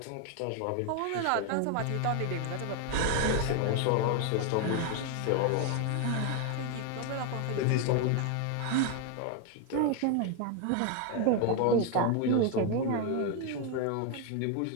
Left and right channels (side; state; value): both; different; correlation 0.01